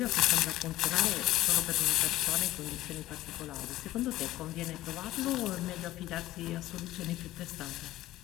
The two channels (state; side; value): quieter; right; 15.4 dB